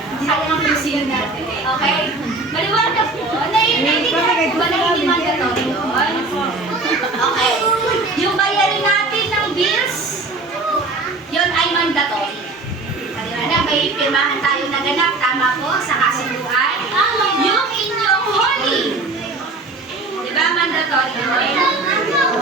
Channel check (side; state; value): left; quieter; 3.3 dB